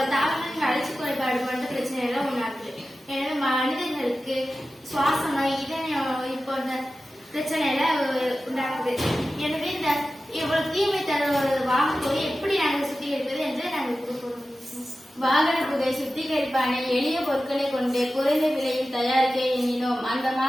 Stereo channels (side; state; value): both; normal; correlation 0.94